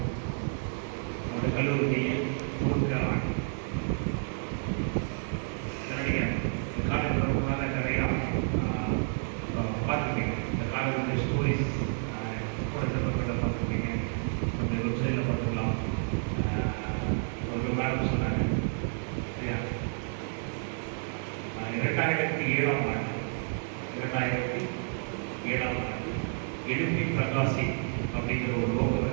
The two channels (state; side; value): silent; left; 58 dB below the other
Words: நம்முடைய கல்லூரியை 3 ஆண்டு காலேஜ் வரதுனால நிறையா பார்த்துருக்கீங்க. இந்த காலேஜ் ஸ்டோரிஸ் கூட சிறப்புகளை பார்த்துருக்கீங்க. அந்த வெப்சைட்டில் பார்த்துக்கலாம். ஒரு மேடம் சொன்னாங்க சரியா? 2007ஆம் ஆண்டு எழுப்பி பிரகாசி அப்படிங்கிற ஒரு லோகோ